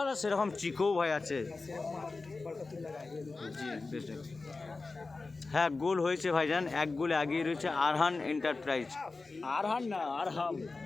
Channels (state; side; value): quieter; right; 3.8 dB